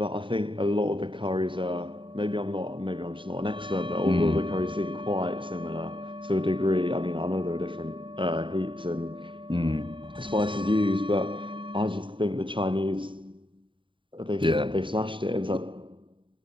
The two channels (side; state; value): left; late; 0.24 ms